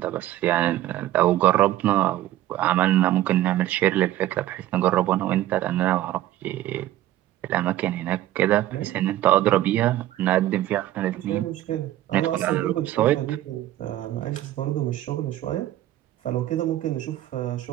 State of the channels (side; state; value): left; quieter; 14.1 dB